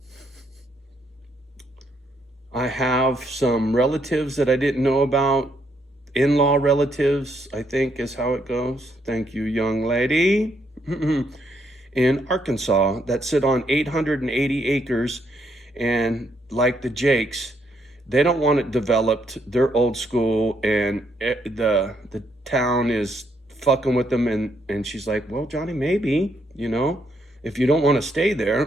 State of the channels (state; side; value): normal; both; correlation 0.74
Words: I have some relatives that I didn't know about. In-law relatives, I think is how it goes. Thank you, young lady. In Arkansas that sit on 880 acres, and like the Jakes, they don't want it developed. They're old school, and the town is fucking with them. And she's like, well, Johnny, maybe, you know, if you don't want to stay